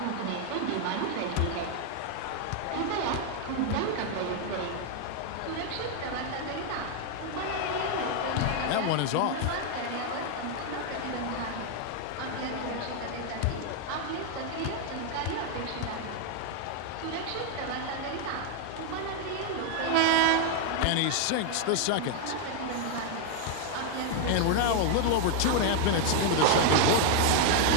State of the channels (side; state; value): both; different; correlation 0.00